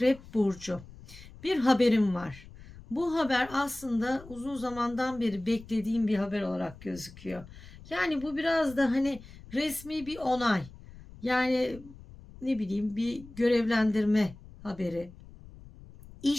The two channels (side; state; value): left; noise; rumble, 19 dB below the sound